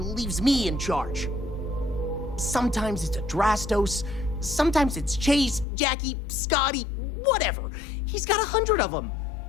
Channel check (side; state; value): right; drops out; at 5.7 s